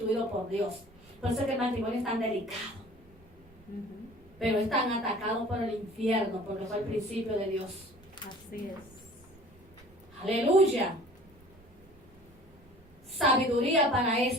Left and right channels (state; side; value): noise; right; rumble, 26 dB below the sound